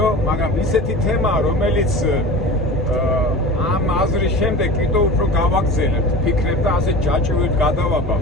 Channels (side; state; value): both; normal; correlation 0.34